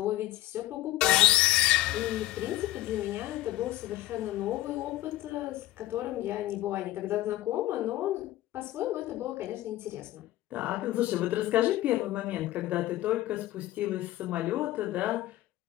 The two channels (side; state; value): right; quieter; 15.4 dB